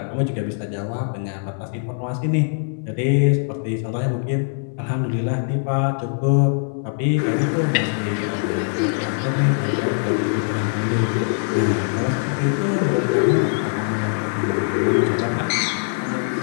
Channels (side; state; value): right; silent; 64 dB below the other